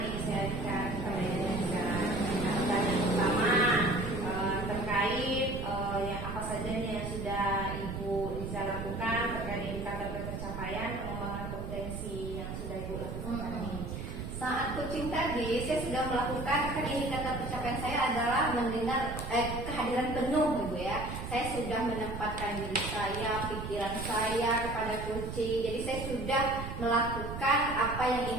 yang bisa saya kepada Ibu Liza. Nah, pertanyaan pertama terkait yang apa saja nih yang sudah Ibu Liza lakukan terkait indikator pencapaian pengembangan kompetensi yang sudah Ibu lakukan tadi. Saat coaching tadi, saya sudah melakukan, kan indikator pencapaian saya adalah mendengar kehadiran penuh, Ibu ya. Saya sudah menempatkan diri saya, pikiran saya kepada coaching. Jadi saya sudah melakukan apa yang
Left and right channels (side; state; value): right; noise; rumble, 7 dB below the sound